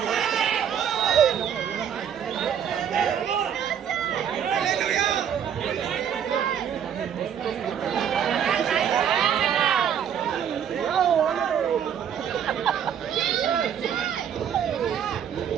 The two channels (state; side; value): quieter; left; 8.6 dB